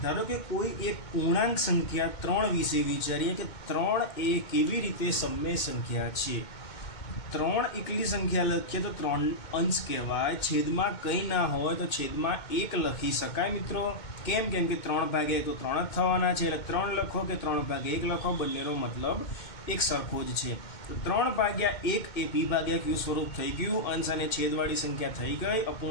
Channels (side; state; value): right; late; 2.2 ms